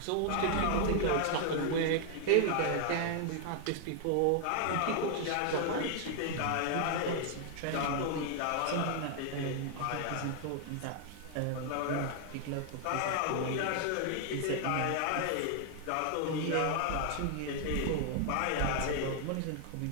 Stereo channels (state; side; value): different; both; correlation 0.00